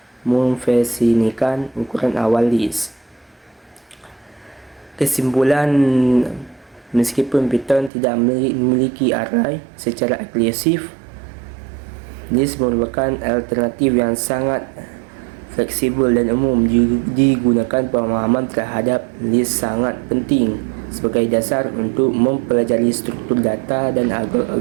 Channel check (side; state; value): left; drops out; at 7.9 s